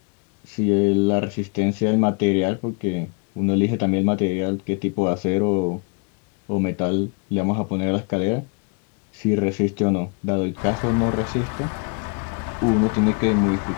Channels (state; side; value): quieter; right; 35.5 dB